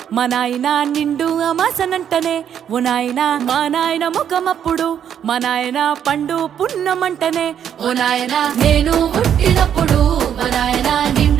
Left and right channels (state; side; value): quieter; left; 9.1 dB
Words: మా నాయన నిండు అమాసనంటనే ఓ నాయన మా నాయన ముఖమప్పుడు మా నాయన పండు పున్నమంటనే ఓ నాయన నేను పుట్టినప్పుడు మా నాయన